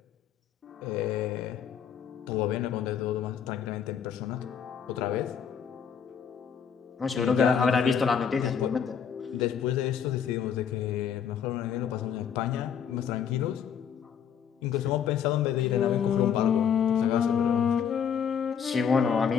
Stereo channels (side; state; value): right; quieter; 7.8 dB